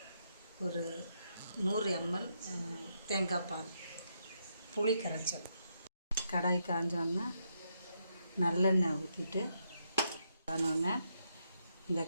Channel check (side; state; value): both; inverted; correlation -0.79